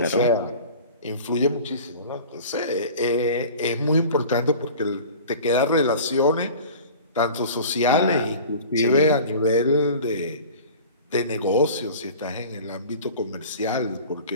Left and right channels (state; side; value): inverted; both; correlation -0.40